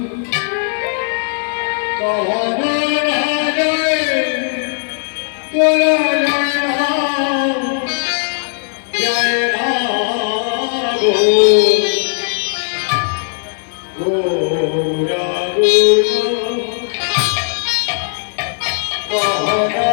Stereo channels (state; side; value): silent; right; 66 dB below the other